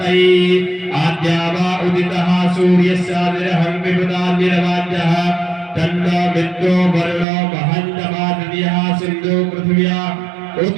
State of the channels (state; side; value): drops out; left; at 7.2 s